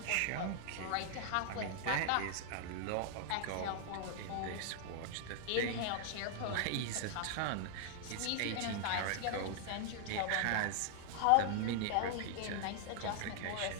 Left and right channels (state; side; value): different; both; correlation 0.00